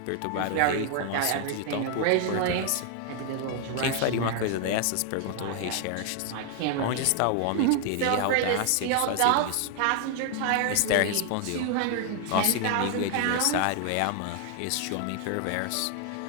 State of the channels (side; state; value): both; different; correlation 0.00